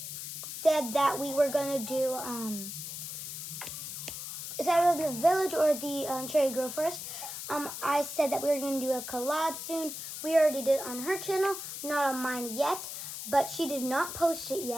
said that we were gonna do is either the village or the Cherry Grove Forest. I said that we were gonna do a collab soon. We already did it on her channel, not on mine yet, but she did not post it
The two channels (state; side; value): noise; left; hiss, 7 dB below the sound